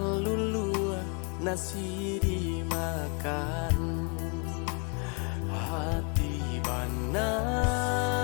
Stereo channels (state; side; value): quieter; right; 35.8 dB